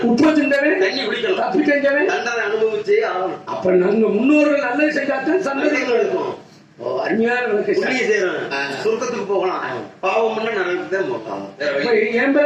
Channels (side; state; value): both; identical; correlation 1.00